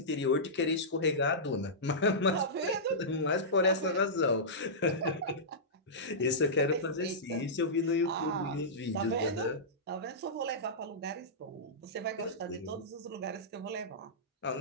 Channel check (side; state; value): both; normal; correlation -0.15